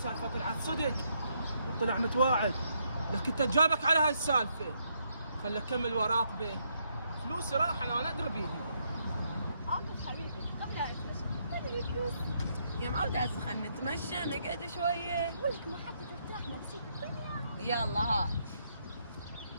طلعت صدق وطلع متواعد، لكن انت جابك على هاي السالفه. خلي اكمل وراقبه. فلوسي راح انا ادري بيها. عاطف حبيبي قبل لا نتمشى خلي فلوس. يا معودة هسه خلنا نتمشى نقعد شوية. ولك ما حتى ترتاح نفسيك الدنيا. يلا هات.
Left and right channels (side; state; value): both; inverted; correlation -0.75